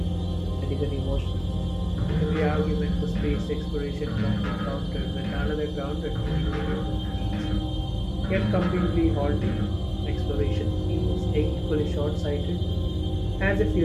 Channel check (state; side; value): identical; both; correlation 1.00